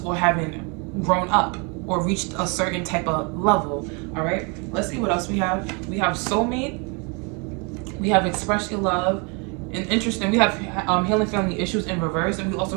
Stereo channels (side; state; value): left; quieter; 32.6 dB